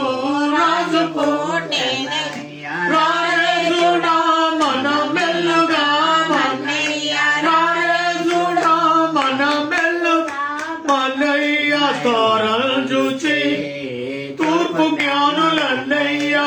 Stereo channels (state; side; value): identical; both; correlation 1.00